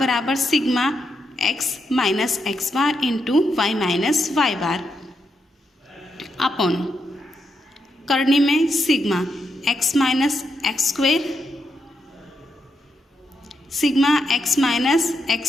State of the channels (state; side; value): normal; both; correlation 0.82